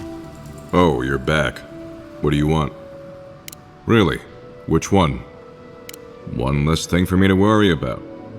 Oh, you're back. What do you want? Really? Which one? One less thing for me to worry about.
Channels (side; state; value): both; identical; correlation 1.00